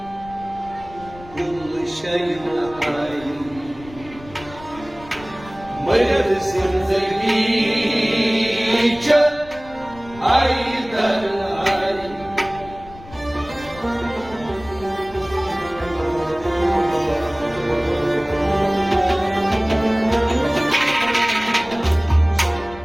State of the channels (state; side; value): noise; left; rumble, 19 dB below the sound